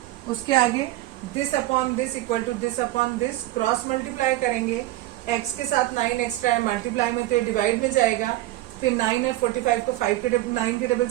उसके आगे this upon this equal to this upon this, cross multiply करेंगे, x के साथ 9 एक्स्ट्रा है, मल्टीप्लाई में तो ये डिवाइड में जाएगा। फिर 9 और 45 को 9 के टेबल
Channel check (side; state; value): left; quieter; 16.6 dB